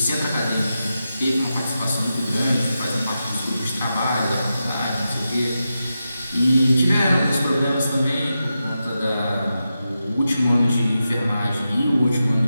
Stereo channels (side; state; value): both; inverted; correlation -0.89